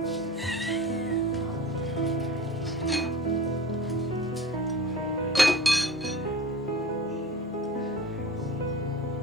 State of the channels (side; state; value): both; normal; correlation 0.37